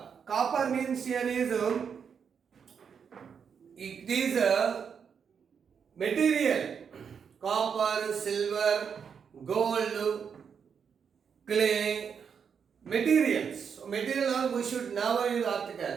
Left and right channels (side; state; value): left; quieter; 6.8 dB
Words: Copper means here is it is a material. Copper, silver, gold, clay, materials. material noun, we should never use